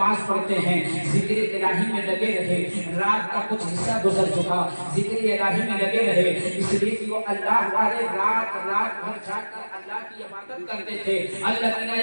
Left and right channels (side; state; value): both; inverted; correlation -1.00